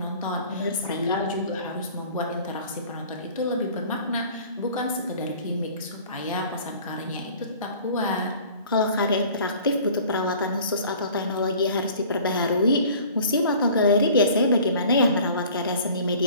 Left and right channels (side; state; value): both; inverted; correlation -0.48